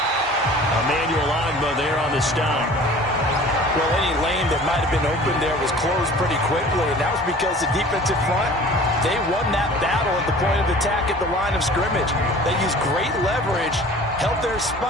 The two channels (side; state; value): both; normal; correlation 0.45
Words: Emmanuel Ogbah there on the stop. Well, any lane that might have been open there was closed pretty quickly, and that was because the defensive front, they won that battle at the point of attack at the line of scrimmage. They used great leverage, held their